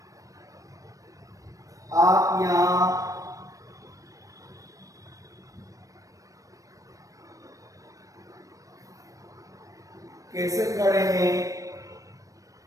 आप यहाँ कैसे खड़े हैं।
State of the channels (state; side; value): late; left; 0.16 ms